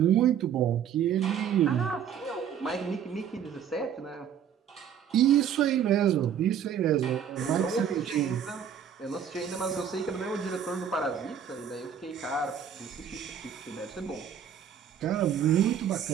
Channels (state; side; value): quieter; left; 8.5 dB